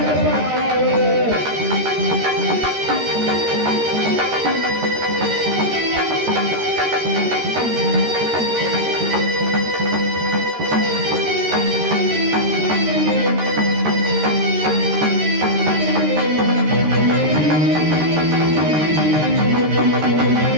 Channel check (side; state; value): left; late; 13 ms